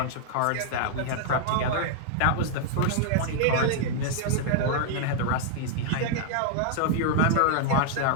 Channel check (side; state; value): both; different; correlation -0.01